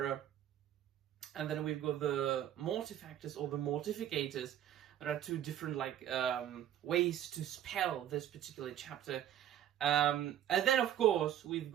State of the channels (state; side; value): quieter; left; 11.0 dB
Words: and then we've got the Mortifactors or the Mortificators. There are 2 different like ways to spell this particular chapter. And then of course we've